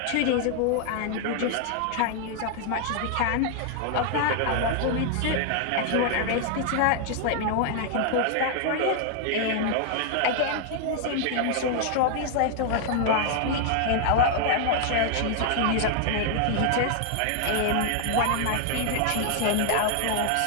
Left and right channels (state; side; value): different; both; correlation 0.00